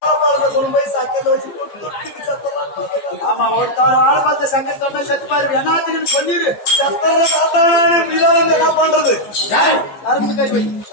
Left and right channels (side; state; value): right; late; 15 ms